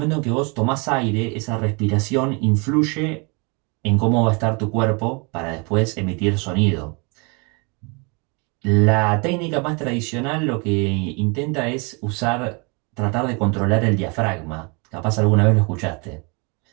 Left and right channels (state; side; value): quieter; left; 31.8 dB